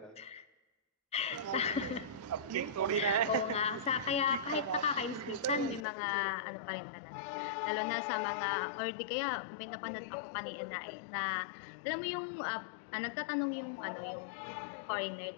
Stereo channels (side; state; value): right; drops out; at 5.9 s